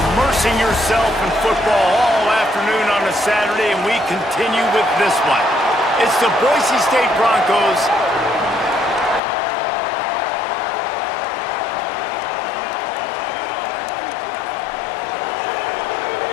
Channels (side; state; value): right; drops out; at 9.2 s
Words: yourself in football all afternoon on a Saturday? And we continue with this one. It's the Boise State Broncos